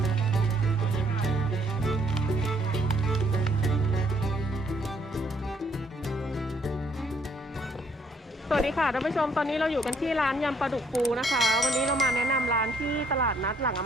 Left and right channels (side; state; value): both; normal; correlation 0.67